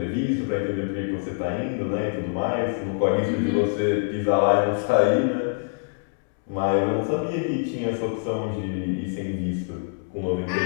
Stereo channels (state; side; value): silent; right; digital silence